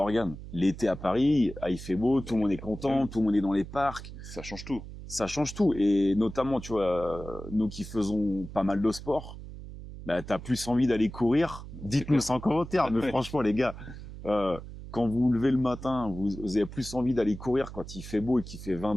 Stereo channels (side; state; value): right; noise; hum, 12 dB below the sound